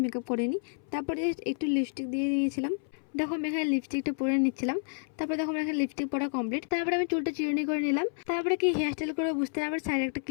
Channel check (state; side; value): silent; right; 58 dB below the other